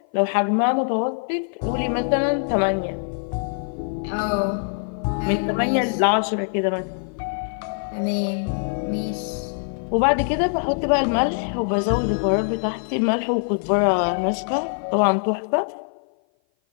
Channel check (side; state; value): right; silent; 56 dB below the other